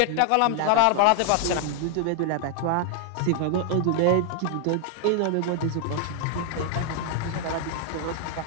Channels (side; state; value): both; different; correlation 0.00